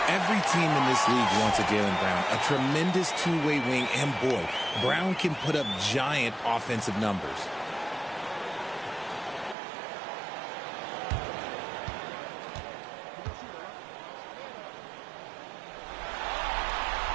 Every team in this league wants a Jaylen Brown, a tremendous two-way wing, and boy, Brown can put up giant offensive numbers.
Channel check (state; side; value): drops out; left; at 9.6 s